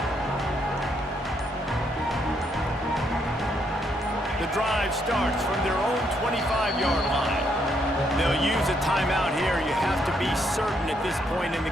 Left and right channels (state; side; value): normal; both; correlation 0.74